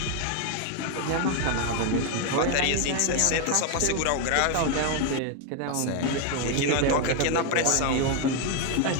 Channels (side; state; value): both; different; correlation 0.01